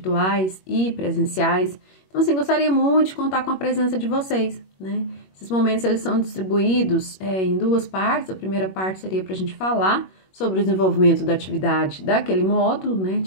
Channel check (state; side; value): late; right; 21 ms